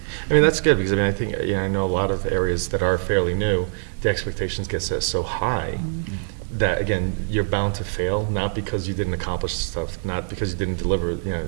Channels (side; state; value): left; silent; digital silence